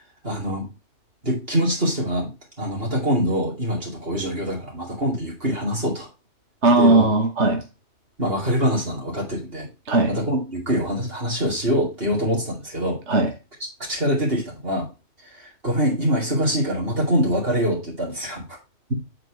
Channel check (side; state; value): left; late; 2.8 ms